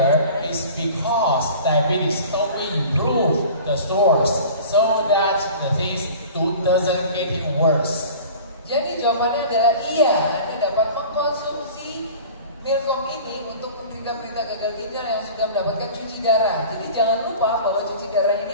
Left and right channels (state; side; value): inverted; both; correlation -0.41